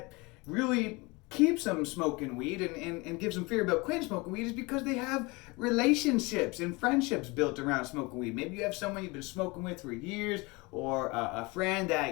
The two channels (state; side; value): quieter; right; 25.5 dB